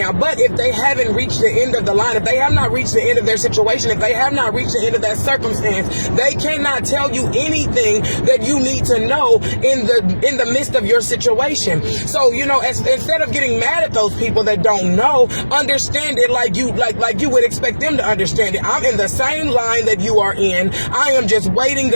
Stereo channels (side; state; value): both; inverted; correlation -1.00